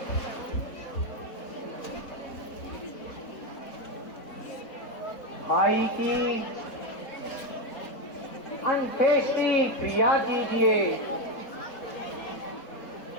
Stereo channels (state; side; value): late; right; 4.2 ms